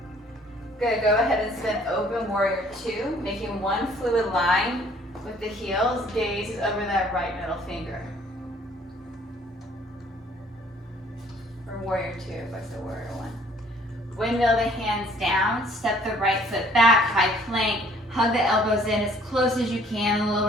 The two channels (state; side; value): normal; both; correlation 0.58